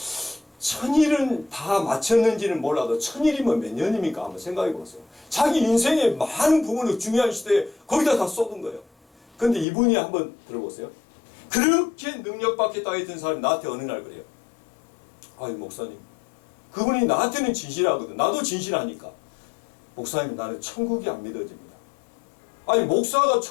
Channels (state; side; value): drops out; right; at 9.7 s